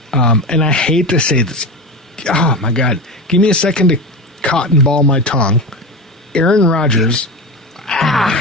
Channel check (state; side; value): normal; both; correlation 0.23